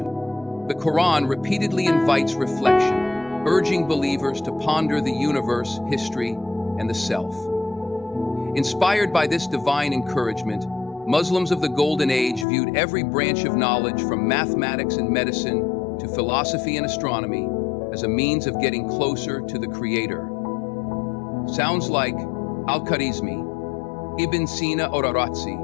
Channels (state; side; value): drops out; right; at 12.5 s